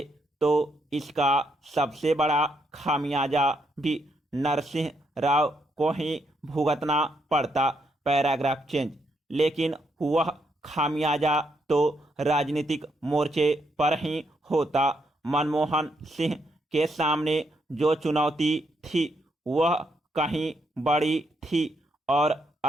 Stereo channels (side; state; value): both; normal; correlation 0.77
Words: तो इसका सबसे बड़ा खामियाजा भी नरसिंह राव को ही भुगतना पड़ता। Paragraph change. लेकिन वह खामियाजा तो राजनीतिक मोर्चे पर ही होता। मनमोहन सिंह के सामने जो चुनौती थी वह कहीं बड़ी थी और